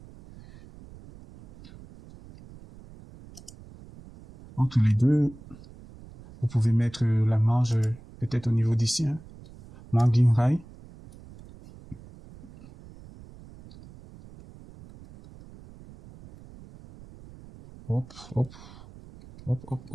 Entre les deux, vous pouvez mettre la marge peut-être au niveau d'ici. Hein. Margin high. Hop, hop. Hop, hop,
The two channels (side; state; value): right; noise; rumble, 20 dB below the sound